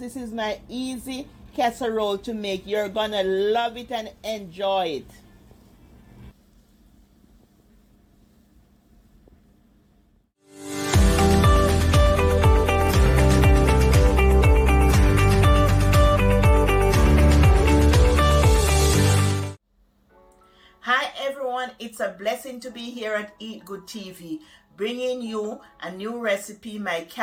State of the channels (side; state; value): both; identical; correlation 1.00